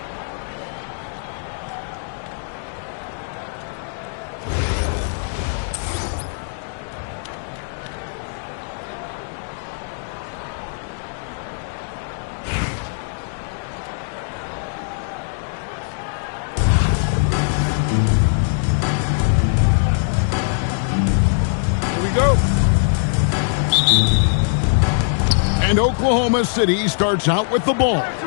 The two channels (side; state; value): right; silent; digital silence